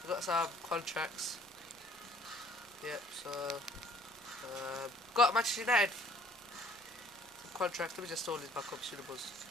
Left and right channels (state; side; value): normal; both; correlation 0.56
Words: got some contracts. Yep. So got Manchester United. Some contracts. Let me just store these back up. Suitables.